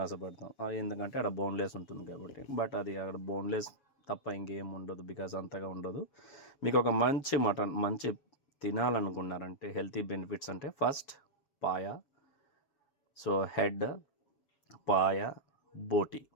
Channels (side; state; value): right; late; 7.1 ms